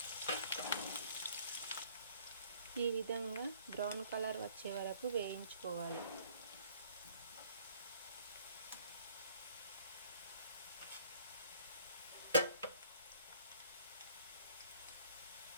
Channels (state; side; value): inverted; both; correlation -0.58